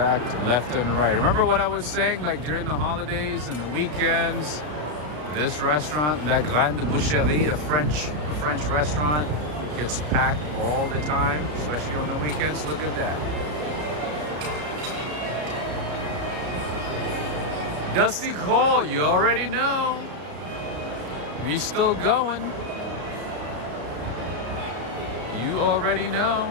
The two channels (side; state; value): left; late; 33 ms